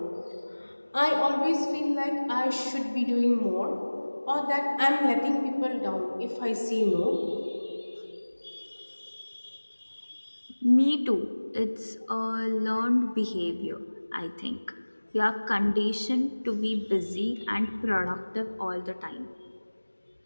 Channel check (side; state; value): both; inverted; correlation -1.00